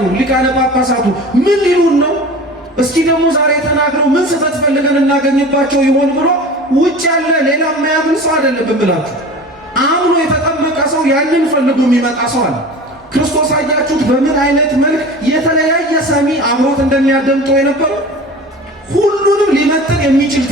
ሊቃነ ጳጳሳቱ ምን ሊሉን ነው? እስኪ ደግሞ ዛሬ ተናግረው ምን ስህተት ፈልገን እናገኝባቸው ይሆን ብሎ ውጭ ያለ ሌላ የማያምን ሰው አይደለም ብላችሁ አምኖ የተጠመቀ ሰው ያንን ፈልጎ የሚመጣ ሰው አለ። ክርስቶስ አያችሁት በምን አይነት መልክ የተለያየ ሰሚ አብሮት እንደሚያደምጠው የነበረው። ሁሉንም ሊመጥን የሚችል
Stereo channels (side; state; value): both; normal; correlation 0.37